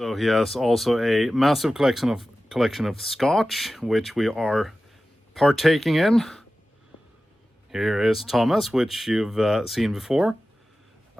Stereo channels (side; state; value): both; normal; correlation 0.95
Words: he has also a massive collection of scotch, which we are partaking in. Here is Thomas, which you've seen before.